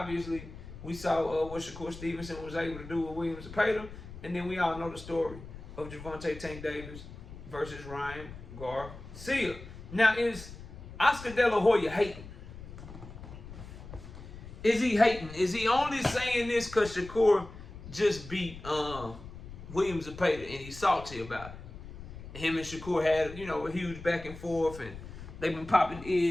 we saw what Shakur Stevenson was able to do with Williams Zepeda, and then we all know the story of Gervonta Tank Davis versus Ryan Garcia. Now, is Oscar De La Hoya hating? Is he hating? Is he only saying this because Shakur just beat Williams Zepeda and he's salty about it? Him and Shakur had, a huge back and forth, and they've been popping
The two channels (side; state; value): left; noise; rumble, 14 dB below the sound